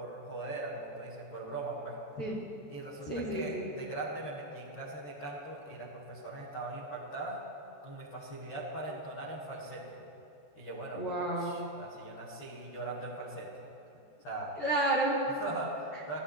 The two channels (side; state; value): right; late; 14 ms